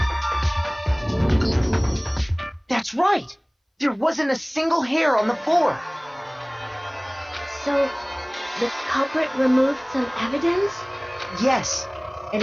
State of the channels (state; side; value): identical; both; correlation 1.00